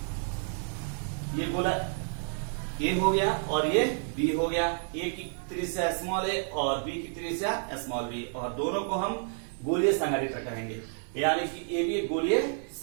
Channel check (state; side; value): silent; left; 58 dB below the other